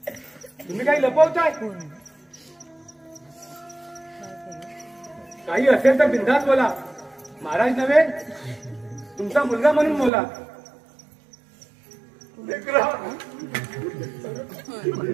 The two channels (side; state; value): left; drops out; at 10.1 s